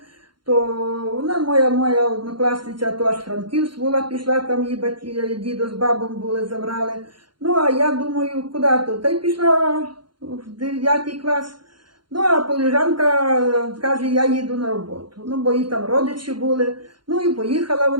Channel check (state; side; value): late; left; 0.72 ms